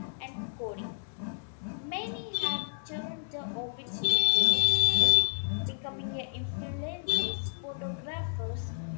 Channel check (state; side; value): silent; right; 57 dB below the other